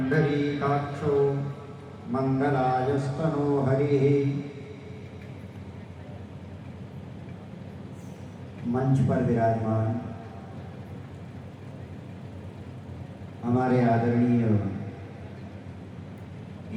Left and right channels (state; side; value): identical; both; correlation 1.00